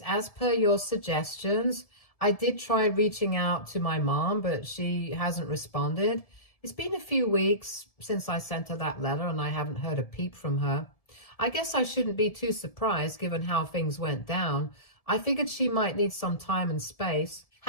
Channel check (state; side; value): late; right; 1.7 ms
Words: as per your suggestions, I did try reaching out to my mom, but she hasn't responded. It's been a few weeks since I sent her that letter and I haven't heard a peep from her. I guess I shouldn't be too surprised given how things went down. I figured she might need some time and space.